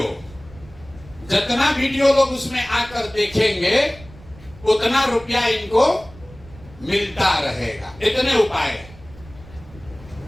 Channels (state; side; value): noise; right; rumble, 21 dB below the sound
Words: जितना वीडियो लोग उसमें आकर देखेंगे उतना रुपया इनको मिलता रहेगा। इतने उपाय।